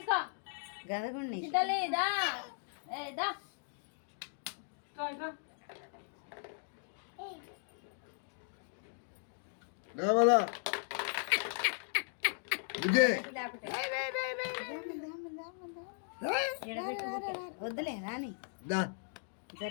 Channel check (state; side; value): silent; right; digital silence